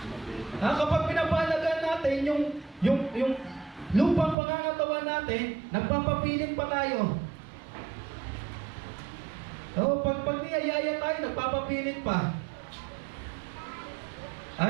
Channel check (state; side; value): drops out; left; at 4.4 s